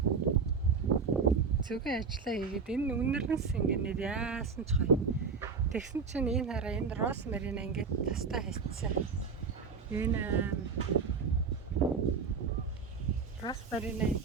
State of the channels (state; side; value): quieter; left; 5.3 dB